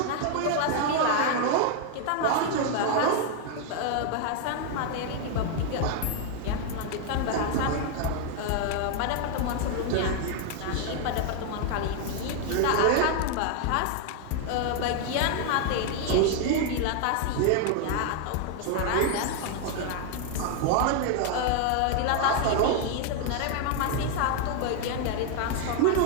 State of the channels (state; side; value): different; both; correlation 0.00